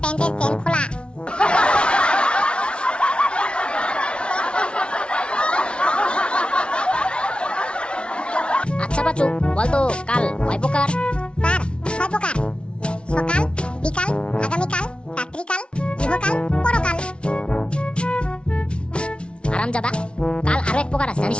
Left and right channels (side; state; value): right; late; 0.058 ms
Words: প্যান্টের চেন খোলা। আচ্ছা বাচু, বল তো কাল কয় প্রকার? স্যার 6 প্রকার। সকাল, বিকাল, আগামীকাল, রাত্রিকাল, ইহকাল, পরকাল। আরামজাদা, কাল আরো এক প্রকার আছে